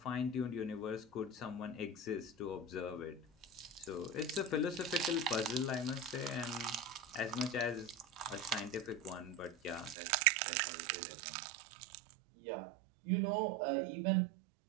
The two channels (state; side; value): drops out; left; at 10.0 s